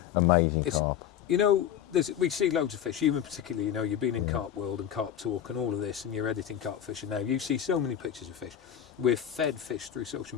amazing carp. You know, we see loads of fish. You in particular, you know, you've been in Carp World and Carp Talk and all of this, and you're editing carp fishing now. You see so many pictures of fish. We're fed fish through social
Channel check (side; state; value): right; quieter; 9.9 dB